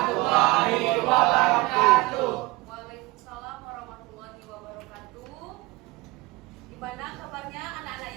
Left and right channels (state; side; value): quieter; left; 21.9 dB